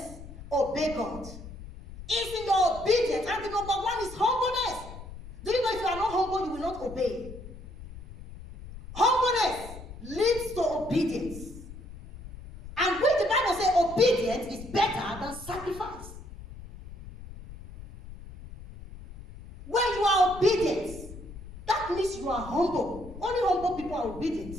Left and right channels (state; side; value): noise; left; rumble, 14 dB below the sound